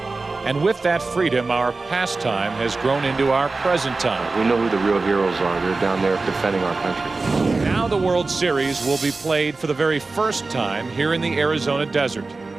And with that freedom, our pastime has grown into our present time. We know who the real heroes are. They're down there defending our country. Now the World Series will be played for the very first time here in the Arizona desert.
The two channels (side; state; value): left; quieter; 3.7 dB